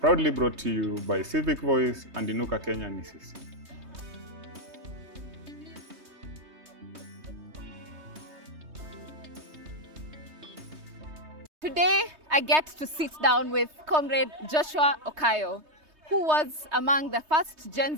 brought to you by Civic Voice and Inuka Kenya Ni Sisi. Today, I get to sit down with Comrade Joshua Okayo, who was among the first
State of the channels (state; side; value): late; left; 3.2 ms